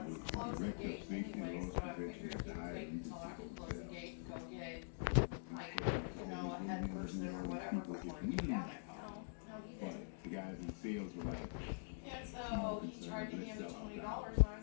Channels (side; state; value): right; silent; digital silence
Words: it's close the gate anyway, so I figured you could wait until I could close the gate and go get, like, you know, a head person or whatever before you get down there. No, he didn't. The guys in sales were like, And so he tried to hand me $20, and I